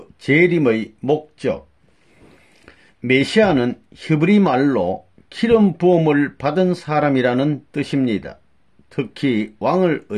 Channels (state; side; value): identical; both; correlation 1.00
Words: 재림의 목적. 메시아는 히브리 말로 기름 부음을 받은 사람이라는 뜻입니다. 특히 왕을